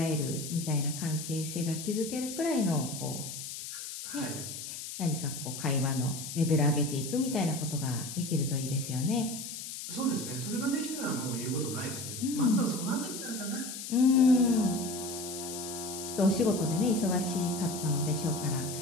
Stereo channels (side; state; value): left; noise; hiss, 8 dB below the sound